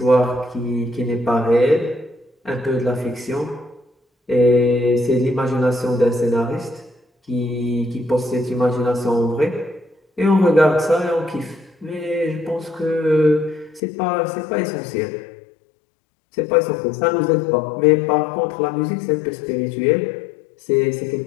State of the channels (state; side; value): drops out; right; at 13.8 s